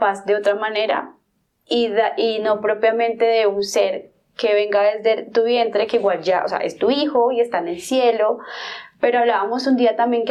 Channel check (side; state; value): both; identical; correlation 1.00